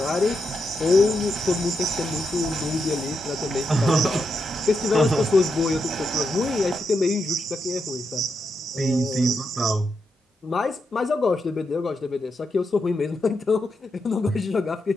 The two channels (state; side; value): normal; both; correlation 0.84